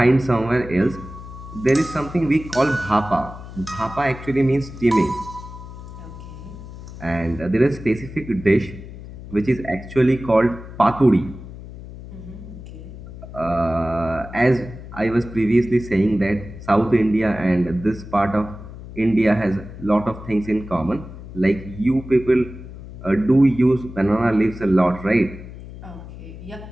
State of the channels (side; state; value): left; noise; hum, 14 dB below the sound